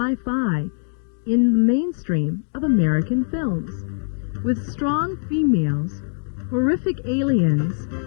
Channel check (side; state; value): right; silent; 64 dB below the other